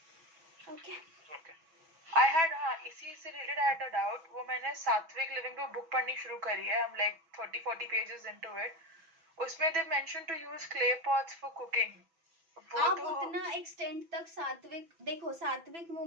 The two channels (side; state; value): left; late; 6.1 ms